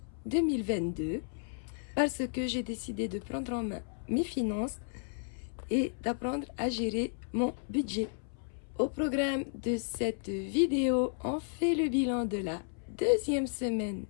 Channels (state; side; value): silent; right; 56 dB below the other